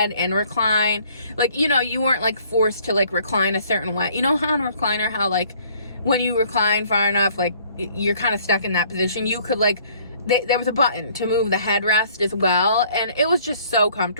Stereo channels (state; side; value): inverted; both; correlation -0.59